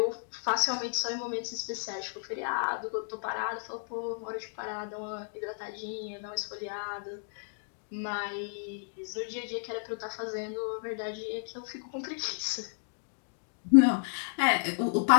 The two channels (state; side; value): silent; right; digital silence